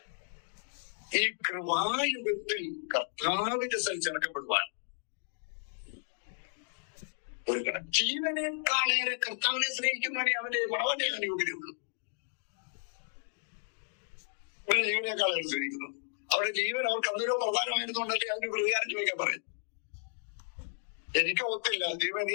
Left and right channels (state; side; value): silent; right; digital silence